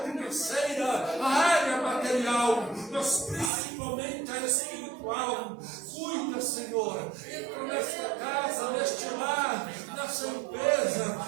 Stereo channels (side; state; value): left; drops out; at 3.5 s